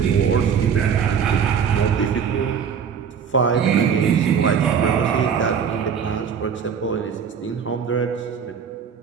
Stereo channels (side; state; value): left; quieter; 7.1 dB